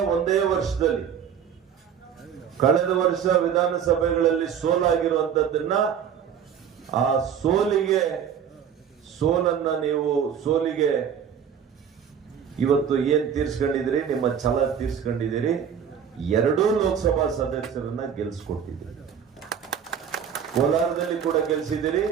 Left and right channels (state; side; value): quieter; left; 8.0 dB